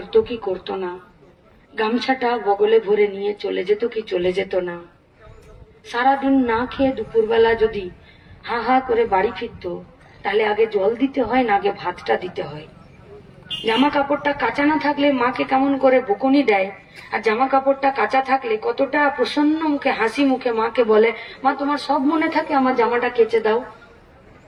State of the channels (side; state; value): both; identical; correlation 1.00